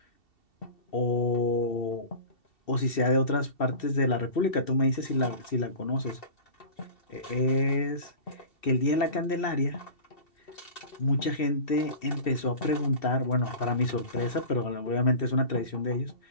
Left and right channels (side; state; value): right; late; 2.7 ms